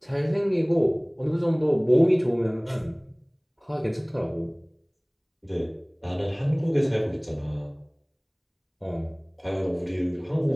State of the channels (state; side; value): identical; both; correlation 1.00